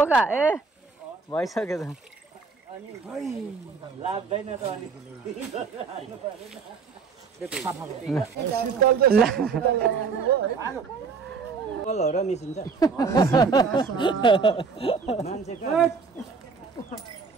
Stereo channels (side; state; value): left; quieter; 5.1 dB